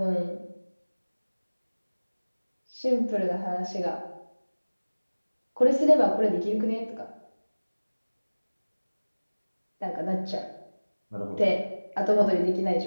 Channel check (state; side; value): inverted; both; correlation -1.00